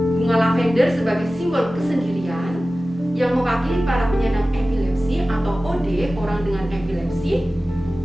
Bunga lavender sebagai simbol kesendirian yang mewakili para penyandang epilepsi atau OD, orang dengan epilepsi,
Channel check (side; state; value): both; normal; correlation 0.96